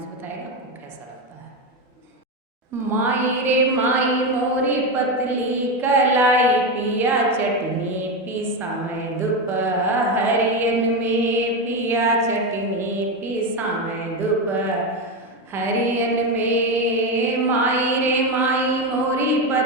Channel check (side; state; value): both; normal; correlation 0.13